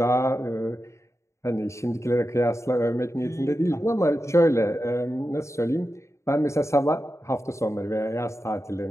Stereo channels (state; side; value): late; right; 0.14 ms